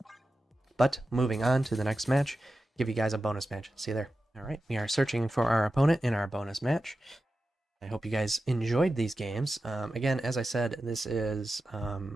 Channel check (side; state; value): both; normal; correlation 0.92